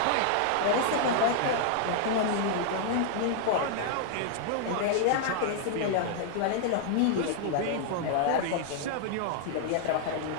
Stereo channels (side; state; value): both; different; correlation -0.01